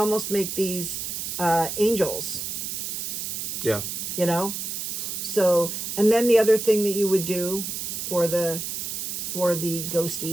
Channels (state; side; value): noise; right; hiss, 4 dB below the sound